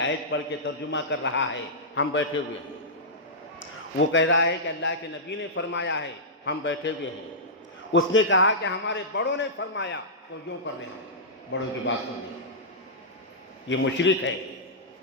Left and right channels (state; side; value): normal; both; correlation -0.14